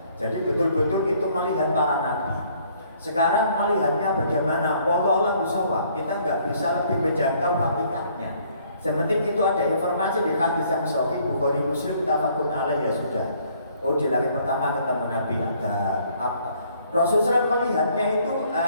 Jadi betul-betul itu melihat para nabi. Sekarang melihatnya bagaimana? Wallahu a'lam. Kita nggak bisa lebih menjangkau hakikatnya. Seperti itu ada informasi di hadis yang sahih Bukhari Muslim tafaqun alaih ya sudah. Oh di langit pertama ketemu Nabi Adam. Rasulullah melihatnya itu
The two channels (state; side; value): inverted; both; correlation -0.63